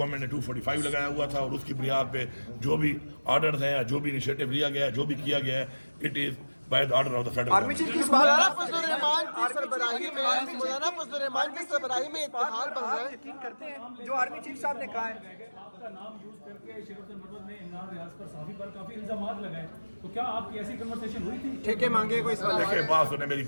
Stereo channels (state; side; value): inverted; both; correlation -1.00